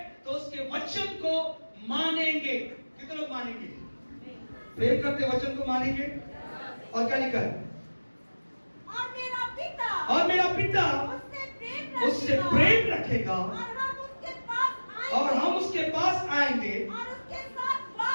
तो उसके वचन को मानेंगे। कितने लोग मानेंगे? प्रेम करते वचन को मानेंगे। और क्या लिखा है? और मेरा पिता उससे प्रेम रखेगा और हम उसके पास आएंगे और उसके साथ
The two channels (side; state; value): both; inverted; correlation -1.00